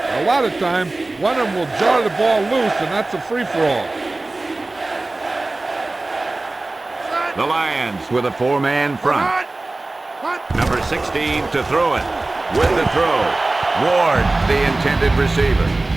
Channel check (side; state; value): left; quieter; 3.0 dB